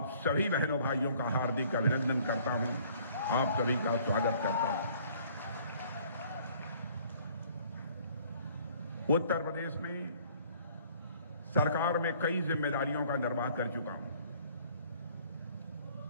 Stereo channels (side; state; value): both; inverted; correlation -0.56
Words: सभी बहनों भाइयों का हार्दिक अभिनंदन करता हूं, आप सभी का स्वागत करता हूं। उत्तर प्रदेश में सरकार में कई जिम्मेदारियों का निर्वाह कर चुका हूं।